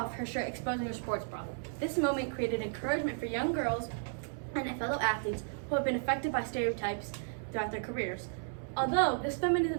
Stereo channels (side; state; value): left; silent; digital silence